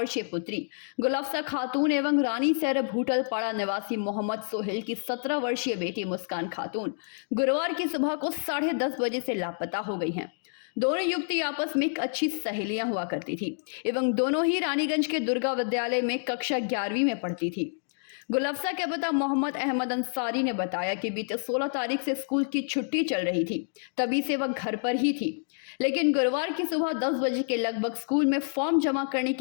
पुत्री गुलाफ्सा खातून एवं रानीसर भूटलपाड़ा निवासी मोहम्मद सोहेल की 17 वर्षीय बेटी मुस्कान खातून गुरुवार की सुबह को 10:30 बजे से लापता हो गई हैं। दोनों युवती आपस में एक अच्छी सहेलियां हुआ करती थी एवं दोनों ही रानीगंज के दुर्गा विद्यालय में कक्षा 11वीं में पढ़ती थी। गुलफ्सा के पिता मोहम्मद अहमद अंसारी ने बताया कि बीते 16 तारीख से स्कूल की छुट्टी चल रही थी, तभी से वह घर पर ही थी। लेकिन गुरुवार की सुबह 10 बजे के लगभग स्कूल में फॉर्म जमा करने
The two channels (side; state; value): right; silent; digital silence